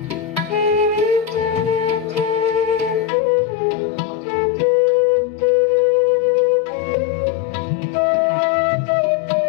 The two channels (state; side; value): drops out; right; at 3.1 s